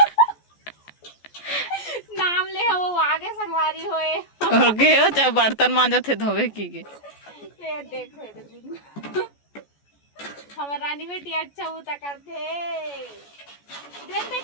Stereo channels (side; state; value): right; late; 14 ms